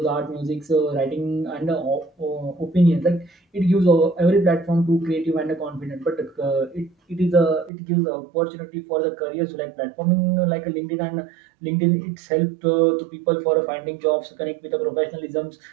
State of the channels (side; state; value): left; drops out; at 7.7 s